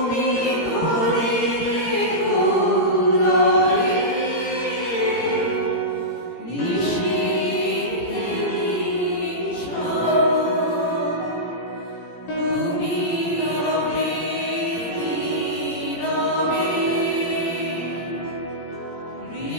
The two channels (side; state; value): right; late; 17 ms